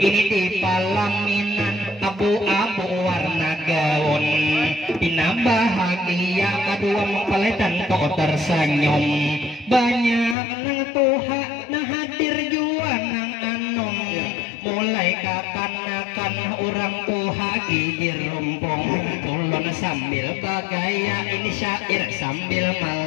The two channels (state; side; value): drops out; right; at 10.4 s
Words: di palaminan abu-abu warna gaun. Ina bahagia kedua mempelai dan kok tersenyum. Banyak nang tuha nah hadir jua nang anom. Mulai kapan-kapan orang tuha gigir rumpung. Ulun sambil bagaya ini syair sambil